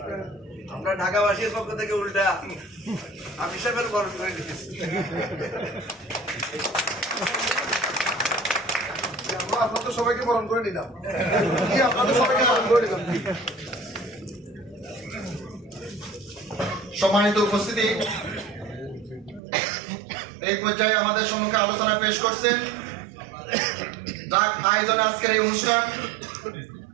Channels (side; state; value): left; drops out; at 19.4 s